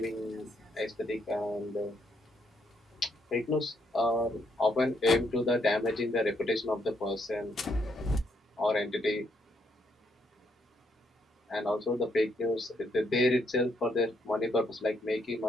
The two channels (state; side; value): normal; both; correlation 0.74